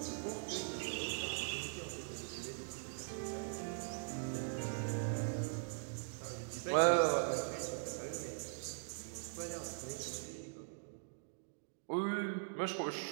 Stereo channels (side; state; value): left; silent; digital silence